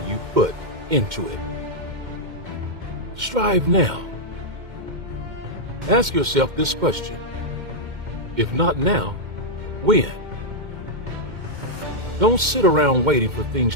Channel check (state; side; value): late; left; 2.1 ms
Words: put into it. Strive now. Ask yourself this question. If not now, when? Don't sit around waiting for things